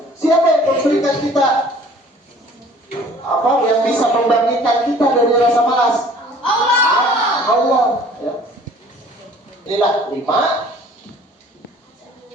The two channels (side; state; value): both; normal; correlation 0.51